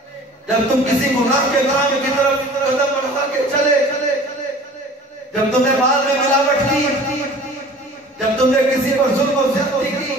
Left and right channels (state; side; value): normal; both; correlation 0.45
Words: جب تم کسی گناہ کے کام کی طرف قدم بڑھا کے چلے, جب تم نے مال میں ملاوٹ کی, جب تم نے کسی پر ظلم و زیادتی کی,